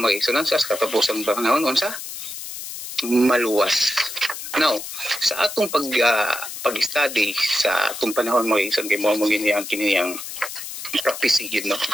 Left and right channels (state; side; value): noise; left; hiss, 9 dB below the sound